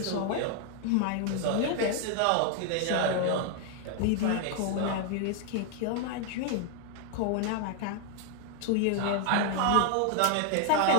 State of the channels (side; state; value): both; different; correlation 0.00